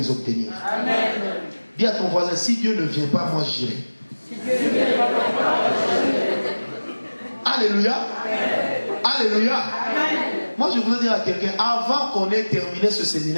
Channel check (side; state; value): both; inverted; correlation -1.00